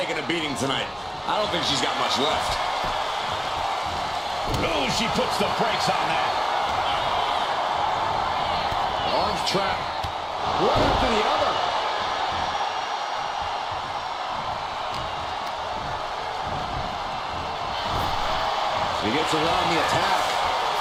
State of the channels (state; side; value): identical; both; correlation 1.00